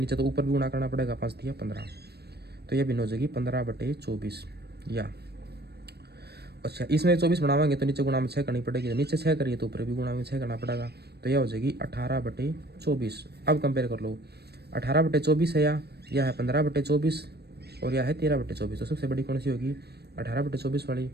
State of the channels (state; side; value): late; left; 0.47 ms